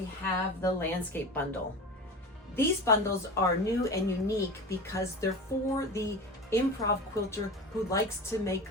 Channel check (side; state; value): both; normal; correlation 0.30